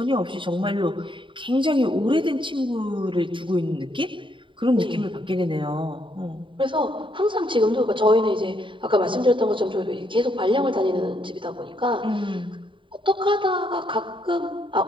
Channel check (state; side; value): late; left; 0.24 ms